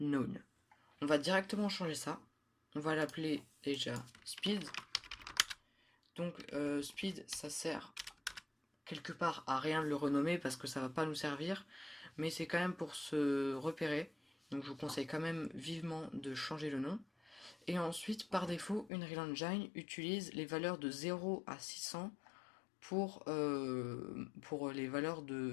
On va directement changer ça. On va l'appeler déjà speed. Donc speed, ça sert quelque part à rien de le renommer parce que ça va pas nous servir, mais c'est quand même pour se repérer. Donc je vous conseille quand même vivement de changer le nom. Et ensuite, par défaut, Unreal Engine utilise les valeurs de 0 à 600 pour les valeurs de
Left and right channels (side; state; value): right; drops out; at 18.9 s